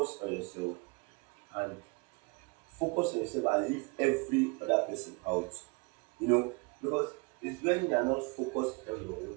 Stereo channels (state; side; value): quieter; left; 30.3 dB